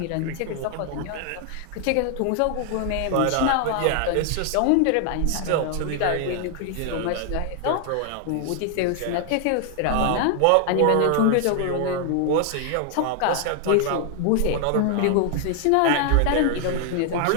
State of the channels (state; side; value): different; both; correlation 0.00